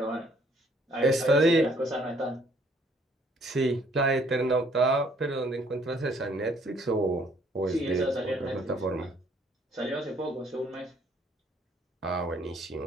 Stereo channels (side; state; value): both; normal; correlation 0.63